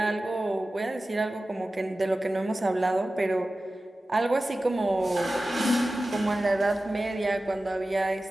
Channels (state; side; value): normal; both; correlation 0.95